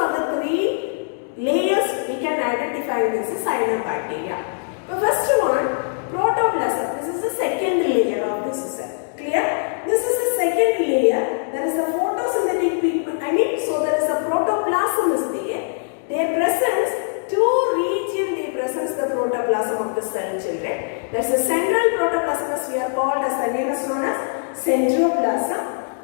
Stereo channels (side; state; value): right; silent; digital silence